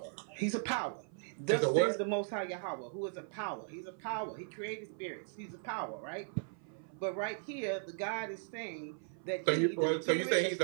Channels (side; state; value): left; silent; 53 dB below the other